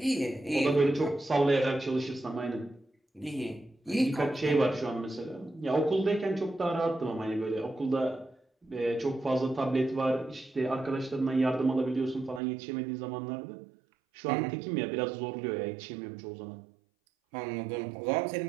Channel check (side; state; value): left; drops out; at 12.4 s